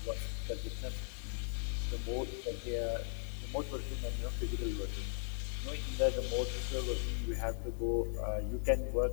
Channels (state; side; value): silent; right; digital silence